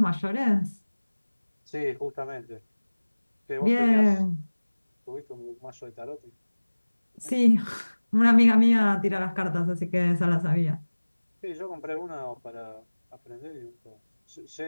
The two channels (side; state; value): both; inverted; correlation -1.00